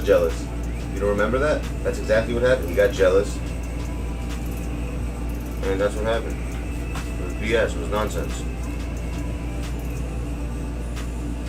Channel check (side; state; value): both; identical; correlation 1.00